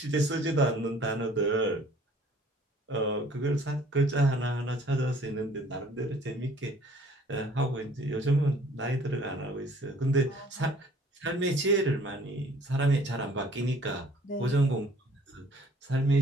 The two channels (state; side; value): normal; both; correlation 0.55